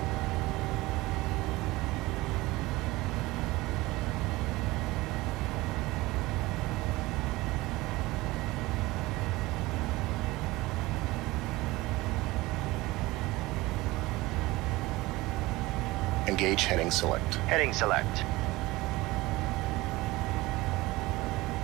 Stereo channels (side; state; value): left; quieter; 20.0 dB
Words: Engage heading select. Heading select.